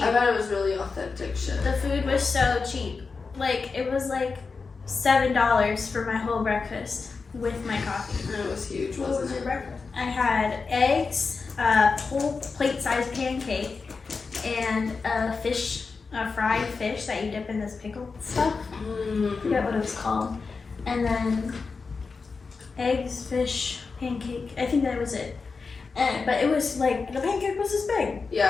I bet it was really authentic shit. The food was so cheap. Like, it was like $7 for my whole breakfast with my coffee. And it was huge, What wasn't was your it? breakfast? I had eggs, a whole plate-sized pancake, and a fried fish that you dip in this pickled stuff. I forget what it was called. And then eggs, fish, pancake. I think that was it. But it was like, the pancake was this big.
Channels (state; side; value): quieter; right; 4.6 dB